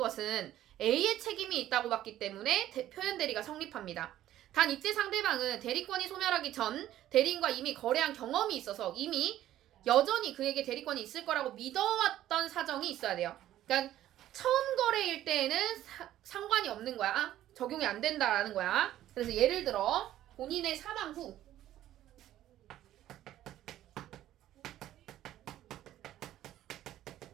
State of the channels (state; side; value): quieter; left; 13.1 dB